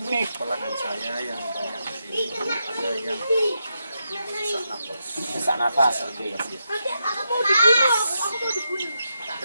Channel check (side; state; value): both; inverted; correlation -0.85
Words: Pelanggan saya yang banyak di sini ada yang sesak nafas, oke.